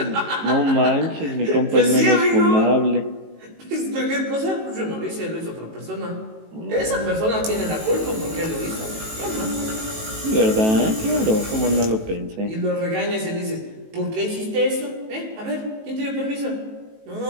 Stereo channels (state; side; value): late; left; 18 ms